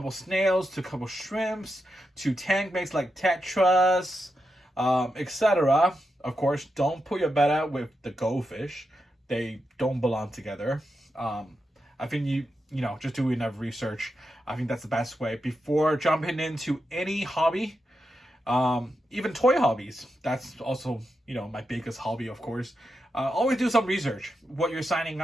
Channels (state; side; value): normal; both; correlation 0.87